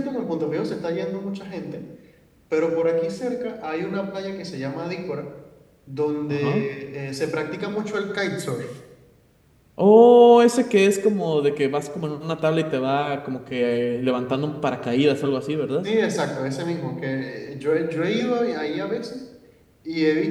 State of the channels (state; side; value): identical; both; correlation 1.00